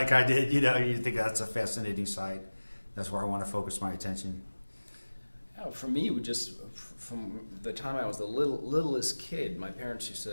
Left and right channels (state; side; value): inverted; both; correlation -1.00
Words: I did, you know, you think that's a fascinating sight. That's where I want to focus my attention. Yeah, for me, from the time I was the littlest kid, my parents